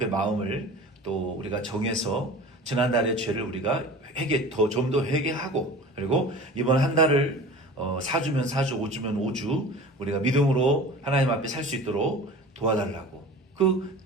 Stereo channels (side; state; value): both; normal; correlation 0.39